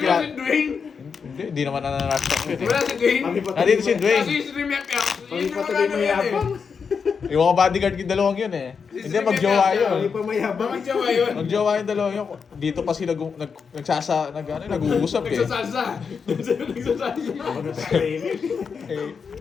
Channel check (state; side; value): quieter; right; 5.9 dB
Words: si Dwayne. Hindi naman nananastak yun eh. Wala si Dwayne. Kami pa Nandito si Dwayne. Kasi si Remiak Yak. Kami pa tuloy mayabang. Yung mga bodyguard yung dalawang yun eh. Hindi, magjowa Kami yun. pa mayabang. Bakit siya ba yun? Magjowa yung dalawang yun. Dito pa sila nag-uusap eh. Nagsasalsa. Nagsasalsa.